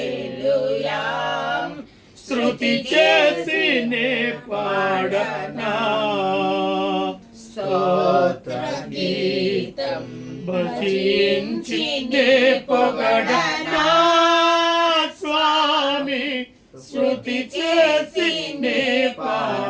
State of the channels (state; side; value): identical; both; correlation 1.00